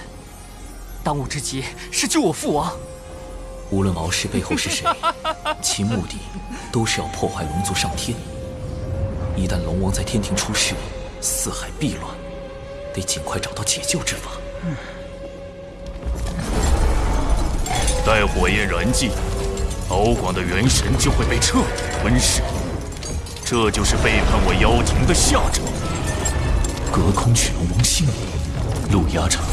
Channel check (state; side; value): identical; both; correlation 1.00